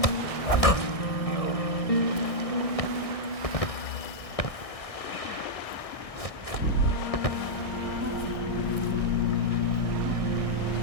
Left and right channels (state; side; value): late; right; 1.6 ms